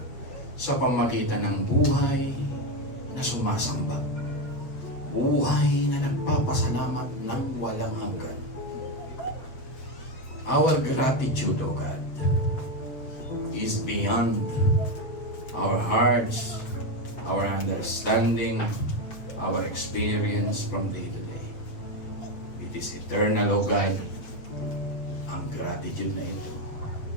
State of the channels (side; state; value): right; late; 7.7 ms